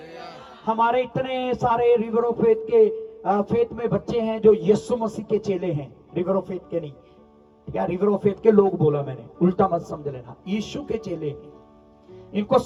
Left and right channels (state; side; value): identical; both; correlation 1.00